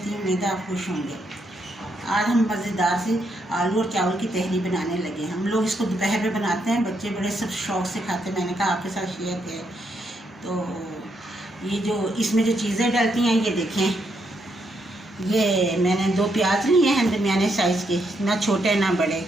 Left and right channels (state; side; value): normal; both; correlation 0.78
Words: हूँ। उम्मीद है आप खुश होंगे। आज हम मज़ेदार से आलू और चावल की तहरी बनाने लगे। हम लोग इसको दोपहर में बनाते हैं, बच्चे बड़े सब शौक़ से खाते हैं। मैंने कहा आपके साथ शेयर किया। तो ये जो इसमें जो चीज़ें डलती हैं ये देखें, ये मैंने 2 प्याज लिए हैं दरमियाने साइज़ के, ना छोटे ना बड़े,